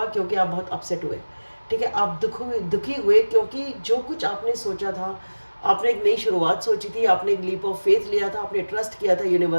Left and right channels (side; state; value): both; inverted; correlation -1.00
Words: क्योंकि आप बहुत अपसेट हुए, ठीक है। आप दुखी हुए क्योंकि जो कुछ आपने सोचा था, आपने एक नई शुरुआत सोची थी, आपने एक लीप ऑफ फेथ लिया था, आपने ट्रस्ट किया था